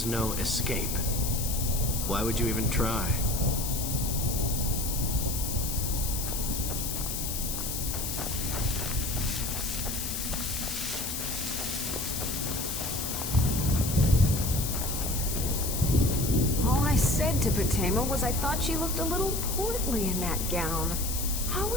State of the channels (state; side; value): noise; left; hiss, 3 dB below the sound